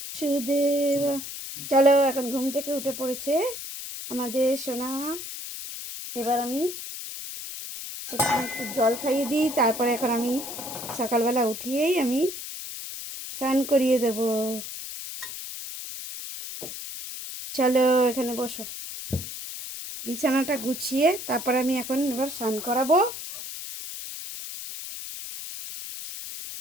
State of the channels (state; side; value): noise; left; hiss, 9 dB below the sound